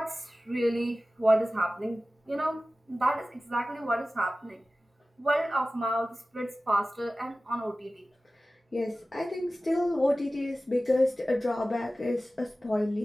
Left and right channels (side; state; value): both; normal; correlation 0.96